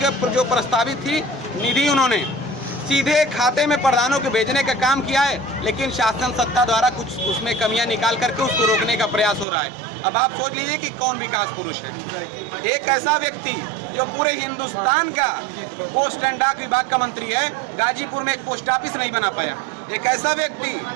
जो प्रस्तावित थी निधि उन्होंने सीधे खाते में प्रधानों के भेजने का काम किया है, लेकिन शासन सत्ता द्वारा कुछ उसमें कमियां निकाल करके उसको रोकने का प्रयास हो रहा है। अब आप सोच लीजिए कि कौन विकास पुरुष है। एक ऐसा व्यक्ति जो पूरे हिंदुस्तान का पोस्ट एंड डाक विभाग का मंत्री है, गाजीपुर में एक पोस्ट ऑफिस नहीं बना पाया। एक ऐसा व्यक्ति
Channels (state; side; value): drops out; left; at 9.5 s